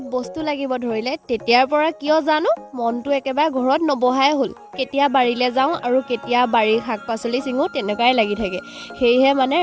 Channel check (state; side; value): identical; both; correlation 1.00